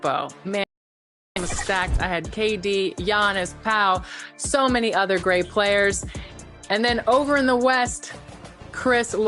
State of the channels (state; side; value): identical; both; correlation 1.00